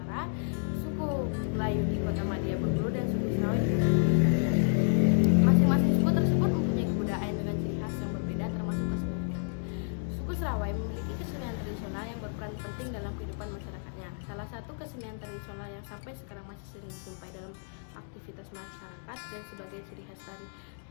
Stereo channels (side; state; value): right; silent; digital silence